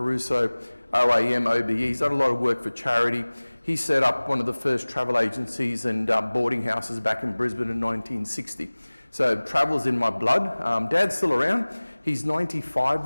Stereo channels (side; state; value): both; inverted; correlation -1.00